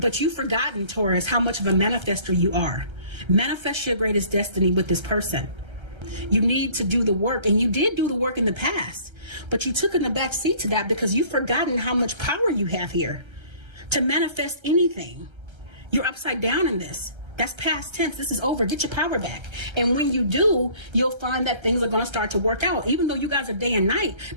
you've forgotten, Taurus, how much of a manifester you are. Manifest your greatest destiny with this person. You need to do the work, and you did do the work in the past, but you took in the back seat to that because you've forgotten how much power you have here to manifest anything. You're upside down in this. That's past tense. This is over. Get your power back. And when you do, you'll find that things are going to start to work out. Even though you guys are day and night,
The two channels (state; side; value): late; left; 1.3 ms